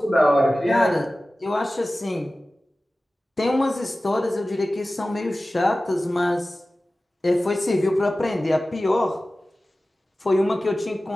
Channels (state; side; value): normal; both; correlation 0.96